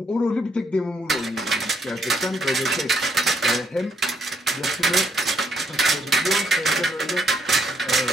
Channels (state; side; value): normal; both; correlation 0.73